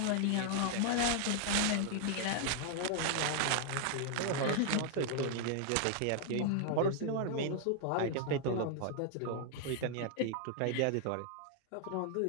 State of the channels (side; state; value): both; different; correlation 0.00